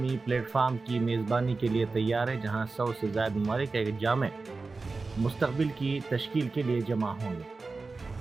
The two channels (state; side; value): quieter; left; 3.9 dB